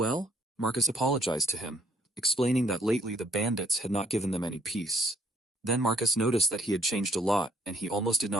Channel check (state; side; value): normal; both; correlation 0.64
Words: Marcus apologized to him, explaining that lately the bandits had not given them any peace. Then Marcus noticed that he had changed a lot, and he almost did